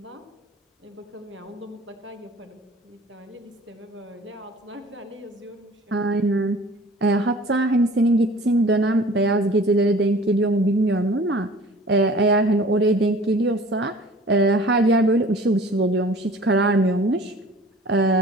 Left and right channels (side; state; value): both; normal; correlation 0.47